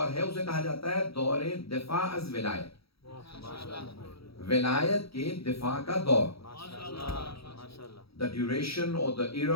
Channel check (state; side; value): late; right; 0.76 ms